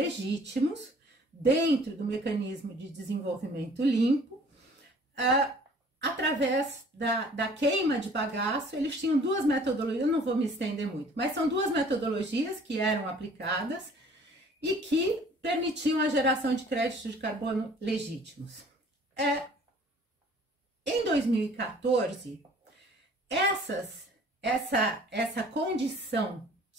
dentro do mecanismo de desenvolvimento limpo, através da queima de bagaço. Eles tinham 2 metodologias, eu não vou me estender muito, mas são 2 metodologias que eram aplicadas e que permitiam a geração de créditos de carbono legítimos. Em 2014, essa condição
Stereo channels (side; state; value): both; normal; correlation 0.52